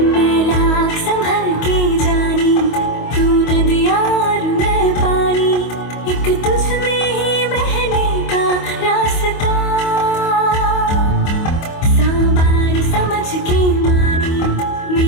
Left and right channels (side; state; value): right; late; 25 ms